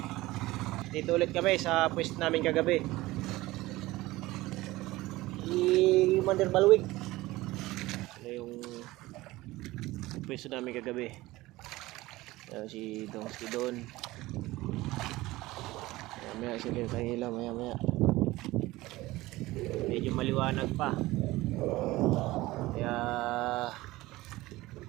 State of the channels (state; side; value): quieter; left; 18.7 dB